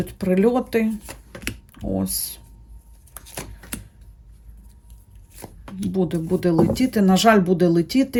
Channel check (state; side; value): identical; both; correlation 1.00